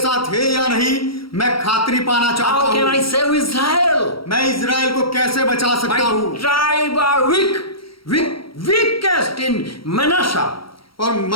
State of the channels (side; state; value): right; late; 0.75 ms